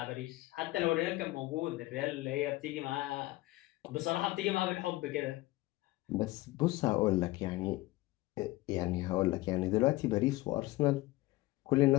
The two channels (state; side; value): quieter; right; 19.2 dB